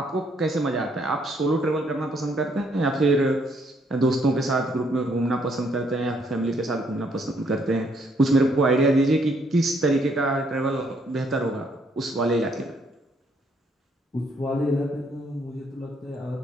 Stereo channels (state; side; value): normal; both; correlation 0.70